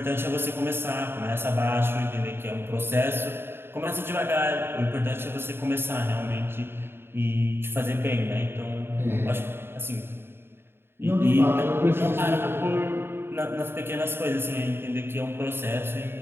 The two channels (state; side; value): late; left; 0.11 ms